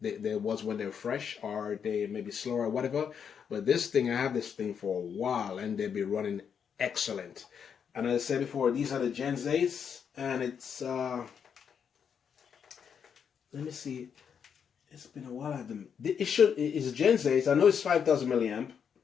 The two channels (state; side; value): quieter; right; 7.3 dB